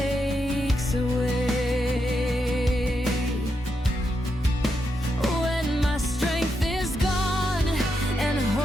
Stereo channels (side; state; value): both; normal; correlation 0.83